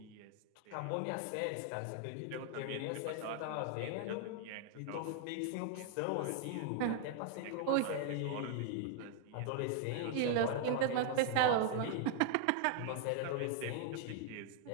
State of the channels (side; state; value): both; different; correlation 0.00